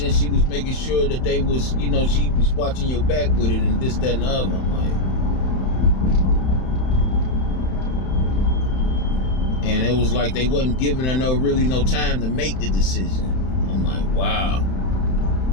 she was making sure that they was, you know, she was watching your back with it and this, that, and the other. I'm like, and it was like they wasn't giving her no time to make the decision. I'm like, wow.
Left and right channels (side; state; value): right; late; 31 ms